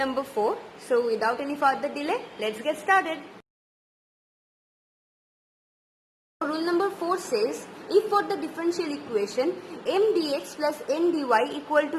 4. So without any further delay, let's get started. Rule number 4 says, if for the differential equation m dx plus n dy equal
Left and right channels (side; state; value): both; identical; correlation 1.00